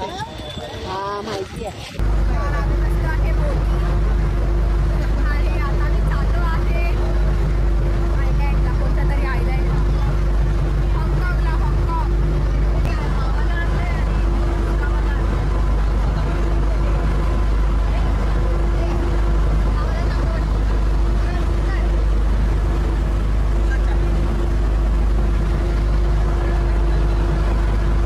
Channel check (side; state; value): both; identical; correlation 1.00